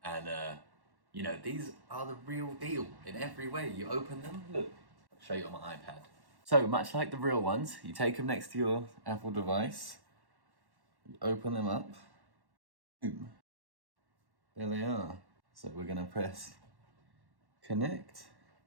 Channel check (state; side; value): late; left; 1.1 ms